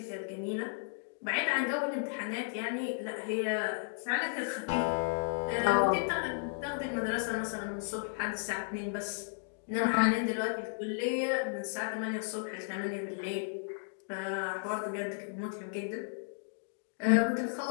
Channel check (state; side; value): silent; right; digital silence